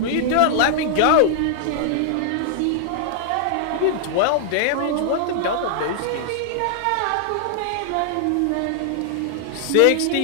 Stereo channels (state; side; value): different; both; correlation -0.01